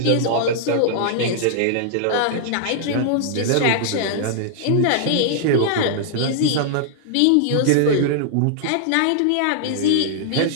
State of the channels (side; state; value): both; different; correlation -0.01